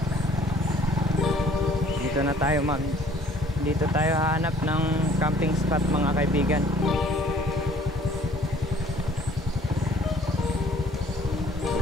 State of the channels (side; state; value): both; normal; correlation 0.56